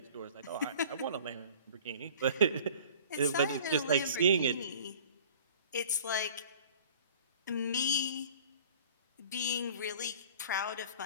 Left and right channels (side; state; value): both; inverted; correlation -0.47